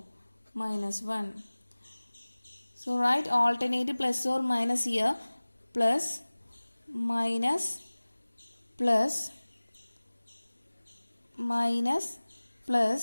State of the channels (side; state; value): both; inverted; correlation -1.00